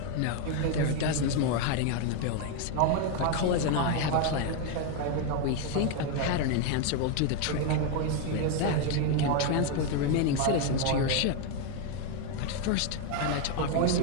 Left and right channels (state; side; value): different; both; correlation 0.01